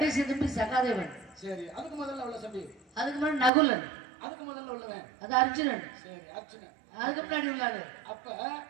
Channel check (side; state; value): left; drops out; at 3.5 s